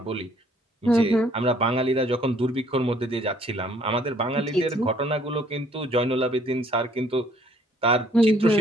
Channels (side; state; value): both; normal; correlation 0.62